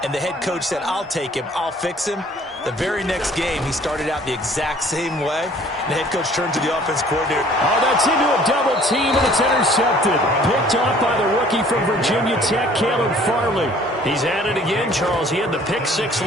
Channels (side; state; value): both; normal; correlation 0.55